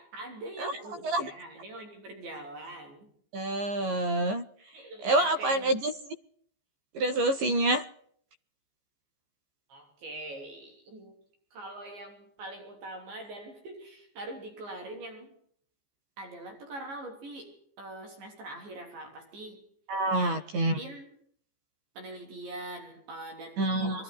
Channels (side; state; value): left; late; 15 ms